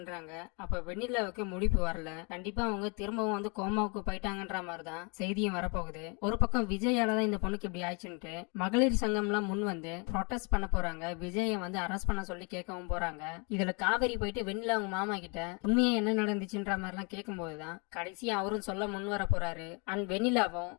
அப்ப வெண்ணிலாவுக்கு முடிப்பு வரல. கண்டிப்பா அவங்க திரும்பவும் வந்து கோமாவுக்கு போயிட்டாங்கன்ற மாதிரிதான் செய்தியும் வரப்போகுது. ஒரு பக்கம் விஜயால தான் இந்த பொண்ணுக்கு இப்படி ஆயிடுச்சுட்டு மகளிர் சங்கம் எல்லாம் முன் வந்து ப்ரொடெஸ்ட் பண்ண போறாங்க. விஜய வந்து அரெஸ்ட் பண்ண சொல்லி கேட்கவும் போறாங்க. இதுல காவேரி போயிட்டு வெண்ணிலா அவங்க மாமா கிட்ட உண்மையா என்ன நடந்துச்சுன்ற மாதிரி எல்லாம் கேட்கும் போதுதான் கடைசியா அவரும் சொல்ல முன் வர போறாரு. அண்ட் வெண்ணிலாவும்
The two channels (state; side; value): quieter; right; 33.2 dB